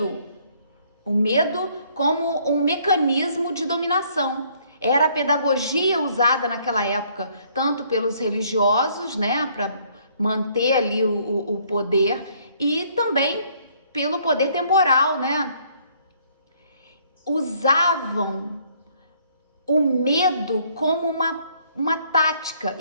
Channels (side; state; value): both; inverted; correlation -0.64